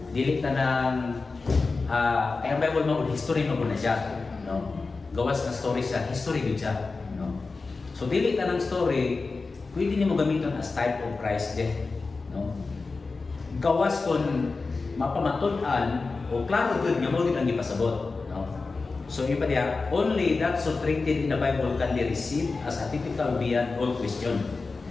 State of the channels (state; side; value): quieter; right; 4.0 dB